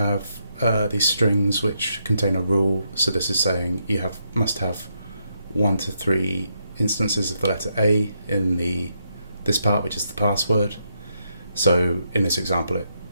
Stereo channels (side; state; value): both; inverted; correlation -0.79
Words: these strings which contain a rule. So this is saying you must have 1 to 3 instances of the letter A in this part, which is the password. So in this example, it